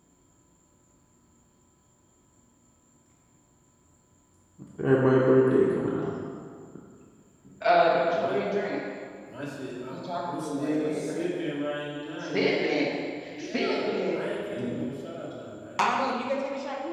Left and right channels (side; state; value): both; identical; correlation 1.00